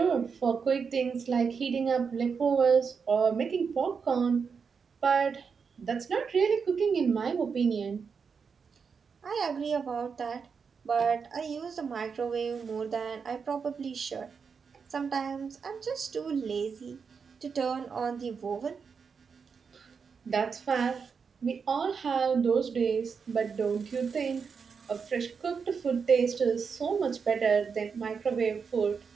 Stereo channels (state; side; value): quieter; left; 5.8 dB